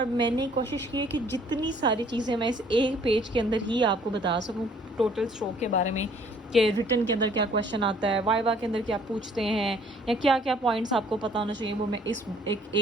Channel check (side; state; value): both; normal; correlation 0.59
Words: मैंने कोशिश की है कि जितनी सारी चीज़ें मैं इस एक पेज के अंदर ही आपको बता सकूं टोटल स्ट्रोक के बारे में, कि रिटन के अंदर क्या क्वेश्चन आता है, वाइवा के अंदर क्या पूछते हैं, या क्या क्या पॉइंट्स आपको पता होना चाहिए, वो मैं इस